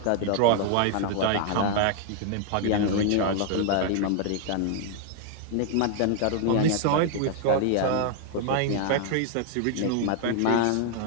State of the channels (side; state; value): both; different; correlation 0.00